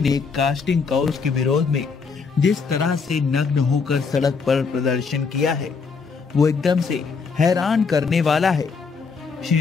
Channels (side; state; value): right; quieter; 5.1 dB